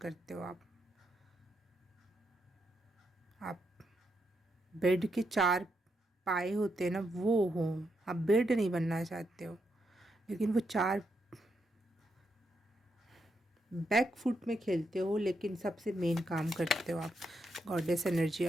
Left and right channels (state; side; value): normal; both; correlation 0.81